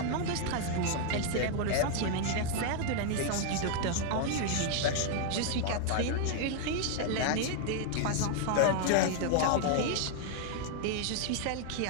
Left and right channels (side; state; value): both; different; correlation 0.00